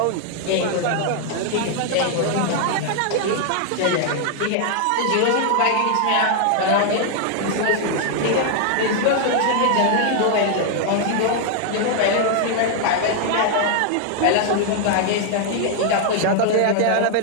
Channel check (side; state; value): both; different; correlation 0.00